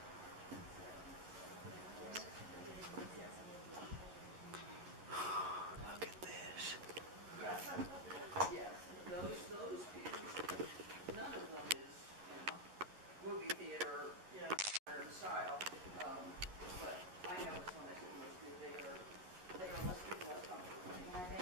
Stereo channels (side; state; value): left; late; 11 ms